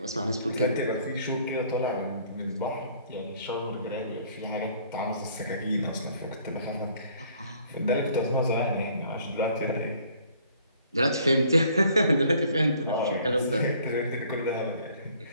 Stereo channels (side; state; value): both; inverted; correlation -0.59